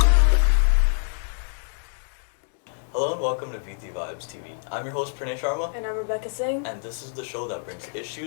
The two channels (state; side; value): silent; right; 60 dB below the other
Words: Hello and welcome to Viti Vibes TV. I'm your host Pranay Sharma, And I'm Rebecca Singh. and this is the show that brings